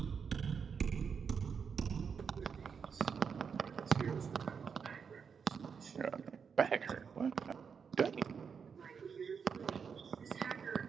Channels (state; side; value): quieter; left; 6.3 dB